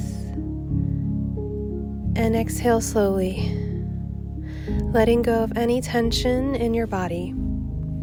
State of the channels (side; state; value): both; identical; correlation 1.00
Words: and exhale slowly, letting go of any tension in your body.